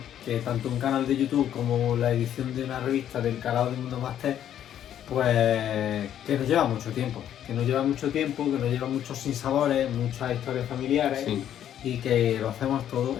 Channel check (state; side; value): quieter; right; 10.5 dB